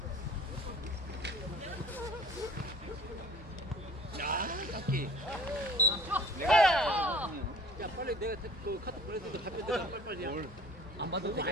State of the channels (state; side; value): normal; both; correlation 0.50